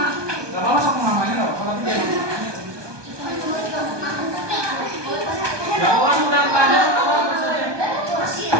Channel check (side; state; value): left; late; 1.2 ms